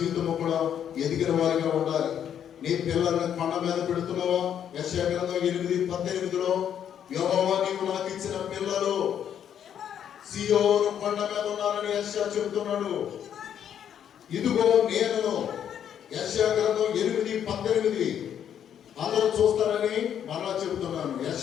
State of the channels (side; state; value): right; quieter; 9.2 dB